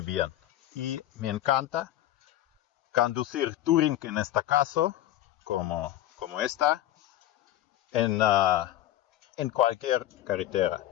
bien. Y me encanta conducir Touring en este caso, como esta, en cualquier carretera,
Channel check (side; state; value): right; quieter; 13.6 dB